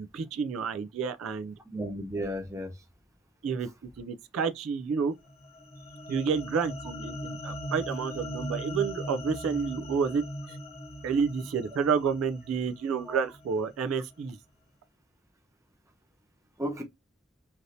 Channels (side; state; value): left; quieter; 4.8 dB